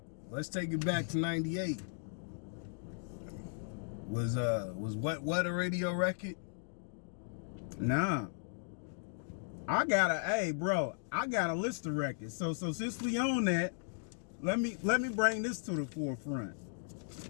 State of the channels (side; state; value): right; silent; digital silence